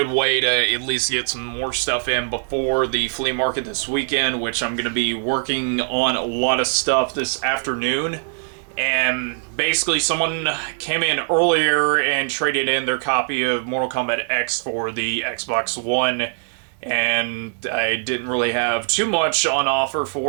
way to at least get some more stuff in before the flea market this weekend, which I'm going to be working on a lot of stuff this afternoon. And basically someone came in earlier and traded in their copy of Mortal Kombat X for the Xbox One. And I didn't really have too much on offer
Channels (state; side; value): silent; left; 65 dB below the other